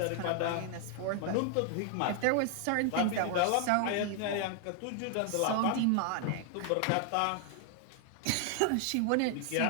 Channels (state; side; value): different; both; correlation 0.00